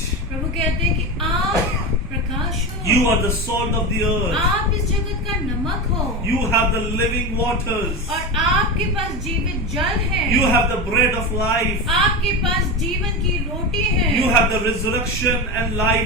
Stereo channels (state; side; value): normal; both; correlation 0.20